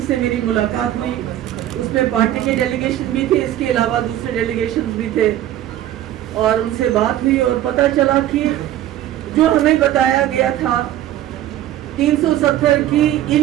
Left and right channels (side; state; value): left; quieter; 12.8 dB